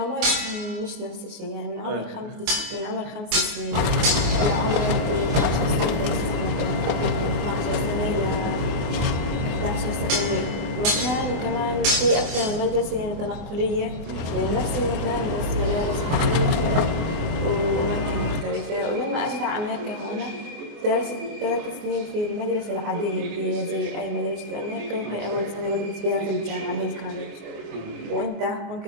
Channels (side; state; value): left; late; 24 ms